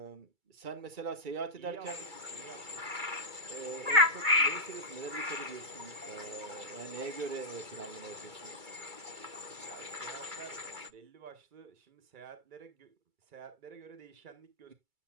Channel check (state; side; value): late; left; 2.3 ms